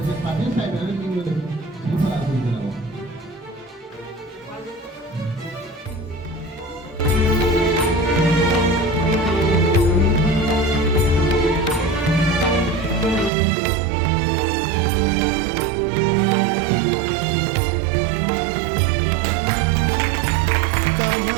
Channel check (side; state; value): left; drops out; at 13.3 s